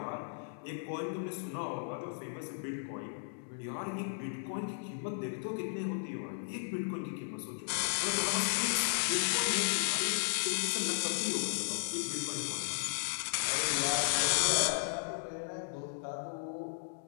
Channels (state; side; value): silent; right; digital silence